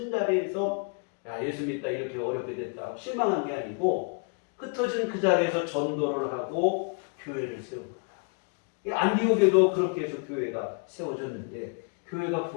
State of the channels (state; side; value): quieter; right; 37.3 dB